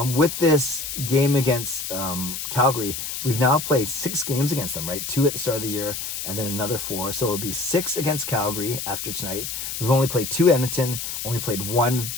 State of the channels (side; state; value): left; noise; hiss, 5 dB below the sound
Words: with this game against Calgary, we've now played 6 games against them, right? 2 at the start of the year and then another 4. So it would be 6 against Calgary after tonight. We've only played 2 Edmonton, only played 1